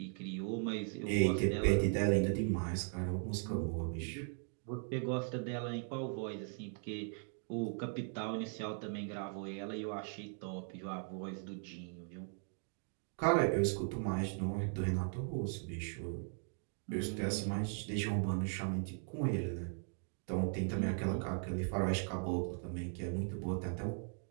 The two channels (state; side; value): silent; left; 52 dB below the other